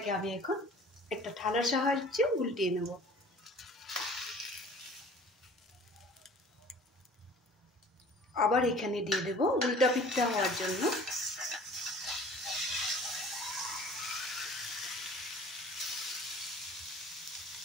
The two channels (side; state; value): both; normal; correlation 0.47